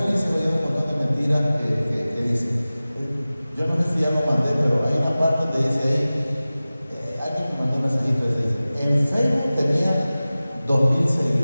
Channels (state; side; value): inverted; both; correlation -0.97